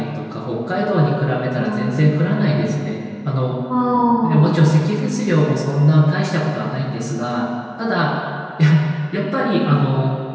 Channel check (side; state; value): both; identical; correlation 1.00